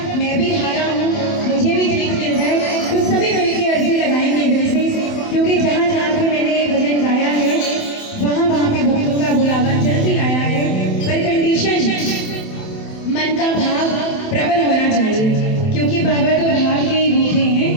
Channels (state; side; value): late; right; 27 ms